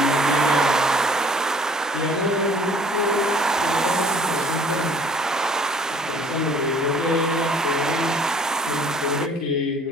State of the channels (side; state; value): both; normal; correlation 0.54